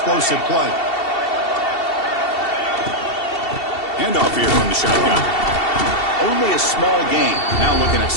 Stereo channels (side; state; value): right; late; 2.7 ms